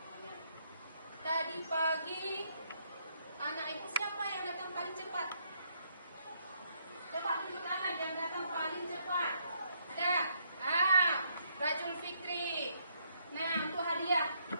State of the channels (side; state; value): both; inverted; correlation -0.72